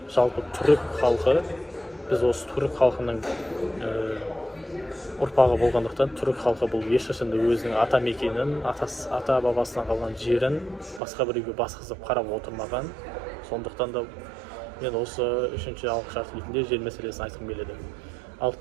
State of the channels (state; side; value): drops out; left; at 11.0 s